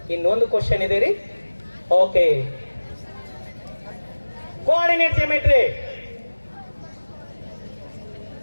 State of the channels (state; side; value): inverted; both; correlation -1.00